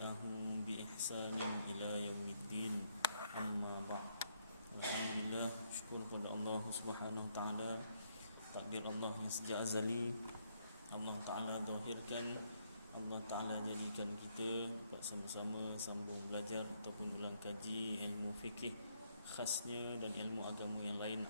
bi ihsanin ila yaumiddin. Amma ba'd. Alhamdulillah, syukur kepada Allah Subhanahu wa taala. Takdir Allah yang sejak azali Allah Ta'ala zahirkan, Allah Ta'ala jadikan kita sama-sama sambung belajar ataupun ulang kaji ilmu fikih khasnya dan ilmu agama yang lain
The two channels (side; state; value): both; inverted; correlation -0.73